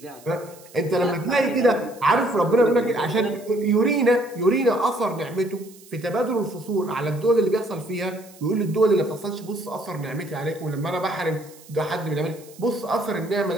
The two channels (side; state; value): right; noise; hiss, 23 dB below the sound